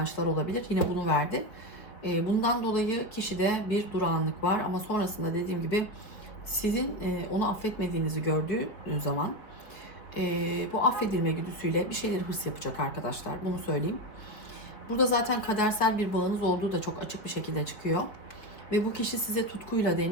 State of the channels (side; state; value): right; late; 4.6 ms